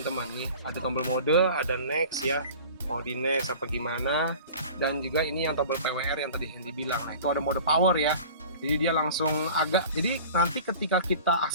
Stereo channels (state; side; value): inverted; both; correlation -0.41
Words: Nih ada tombol mode, ada next ya, mau di next apa gimana, dan juga ini yang tombol PWR yang tadi Hendy bilang. Nah itu ada mode power ya, jadi dia langsung agak, jadi nanti ketika kita